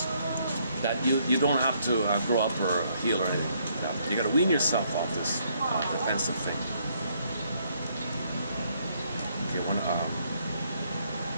that you don't have to grow up or heal or anything. You got to wean yourself off this defensive thing.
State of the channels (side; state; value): both; inverted; correlation -0.70